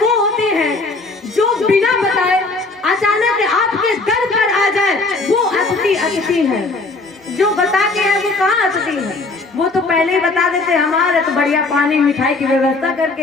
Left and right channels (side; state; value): right; quieter; 3.5 dB